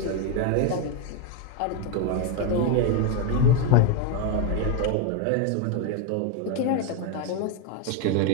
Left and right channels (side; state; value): both; different; correlation 0.01